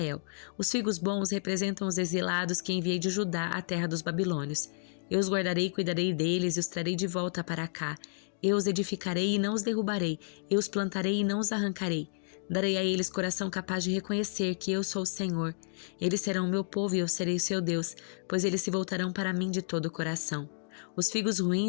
Os figos bons representam os exilados que enviei de Judá à terra dos babilônios. Eu os guardarei e cuidarei deles e os trarei de volta para cá. Eu os edificarei e não os derrubarei. Eu os plantarei e não os arrancarei. Darei a eles coração capaz de reconhecer que eu sou o Senhor. Eles serão o meu povo e eu serei o seu Deus, pois eles se voltarão para mim de todo o coração. Os figos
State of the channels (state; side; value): silent; right; digital silence